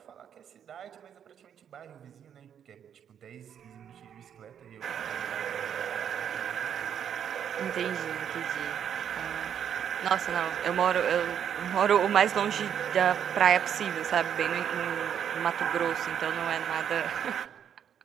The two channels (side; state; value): left; quieter; 8.8 dB